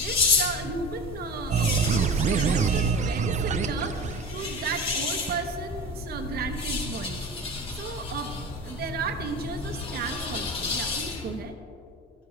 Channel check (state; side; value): normal; both; correlation 0.31